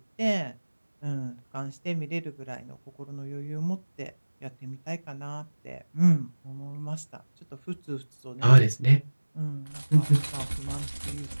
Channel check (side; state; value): both; inverted; correlation -1.00